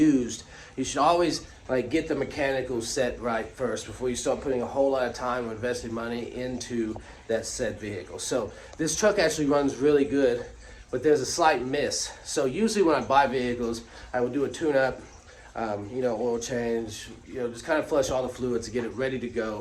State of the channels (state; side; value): identical; both; correlation 1.00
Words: you should always get the mechanical set right first before you start putting a whole lot of time or investing money into that said vehicle. So this truck actually runs really good, but there's a slight miss. So usually when I buy vehicles, I would do a tune-up, oil change, just kind of flush all the fluids to get it ready to